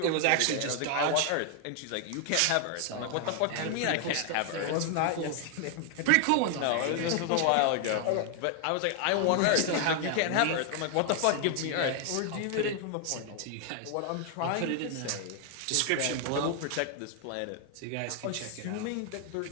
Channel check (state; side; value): different; both; correlation 0.00